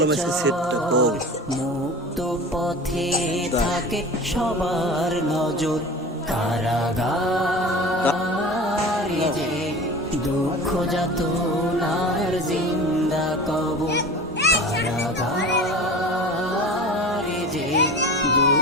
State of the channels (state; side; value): normal; both; correlation 0.36